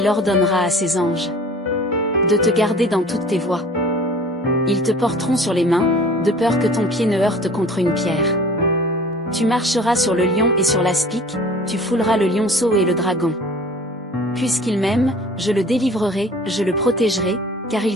ordonnera à ses anges de te garder dans toutes tes voies. Ils te porteront sur les mains, de peur que ton pied ne heurte contre une pierre. Tu marcheras sur le lion et sur l'aspic, tu fouleras le lionceau et le dragon. Puisqu'il m'aime, je le délivrerai, je le protégerai, car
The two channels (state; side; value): normal; both; correlation 0.46